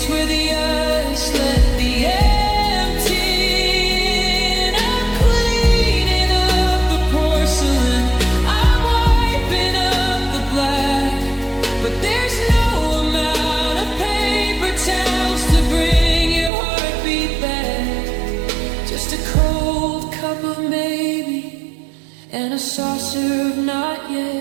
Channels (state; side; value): drops out; left; at 16.5 s